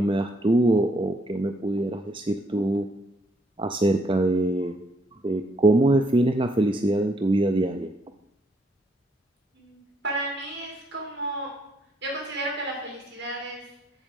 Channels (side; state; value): both; normal; correlation 0.71